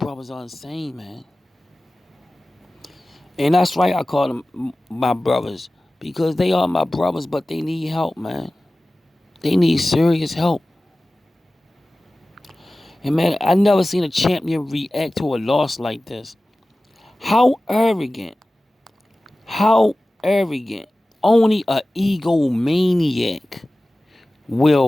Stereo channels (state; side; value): normal; both; correlation 0.97